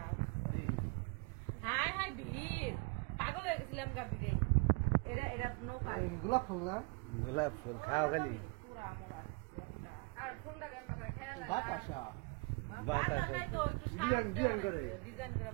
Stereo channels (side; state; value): left; quieter; 31.1 dB